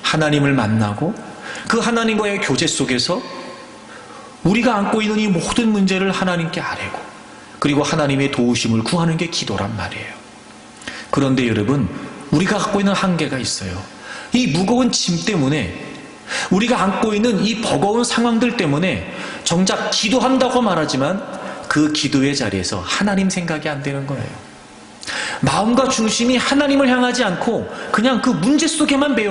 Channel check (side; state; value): both; identical; correlation 1.00